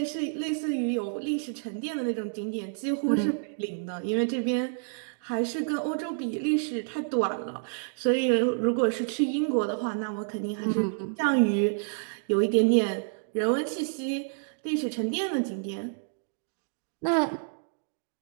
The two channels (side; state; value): left; silent; digital silence